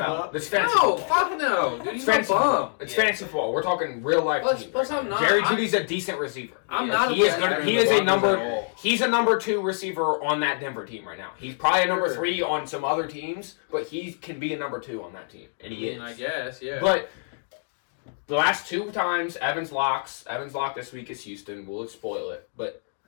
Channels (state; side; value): silent; right; digital silence